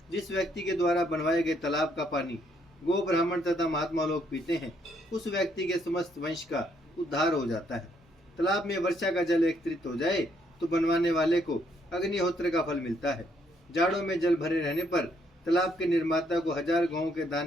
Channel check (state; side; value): normal; both; correlation 0.71